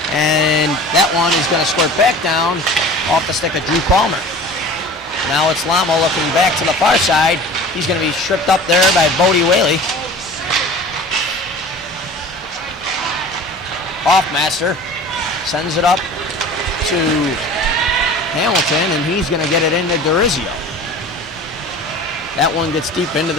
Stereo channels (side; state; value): both; normal; correlation 0.41